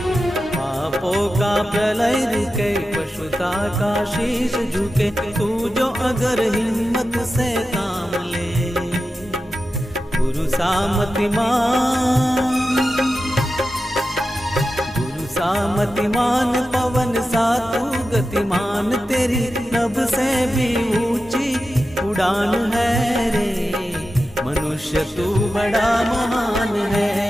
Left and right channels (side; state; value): both; normal; correlation 0.92